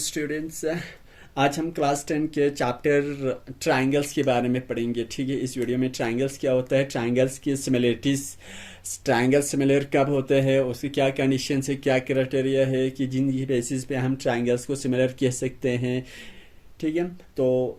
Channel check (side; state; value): both; identical; correlation 1.00